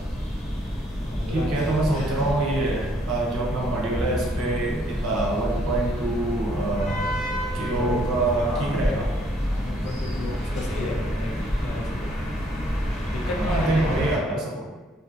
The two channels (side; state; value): both; normal; correlation 0.66